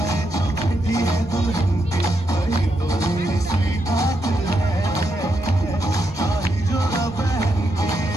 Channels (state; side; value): normal; both; correlation 0.82